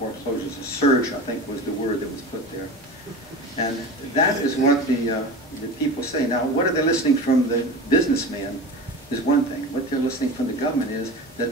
A surge, I think, was the word that was put there. And that is what the people say. Now, what are they listening from the businessman is one thing. What they're listening from the government is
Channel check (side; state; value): both; normal; correlation 0.31